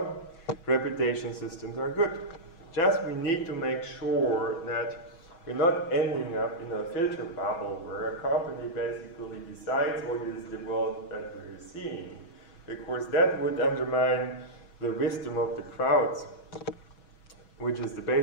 reputation systems are good. Just we need to make sure that we're not ending up in a filter bubble where a company basically decides what is the world that we're seeing, because that would undermine the wisdom of the crowds, which is the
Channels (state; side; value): late; right; 6.1 ms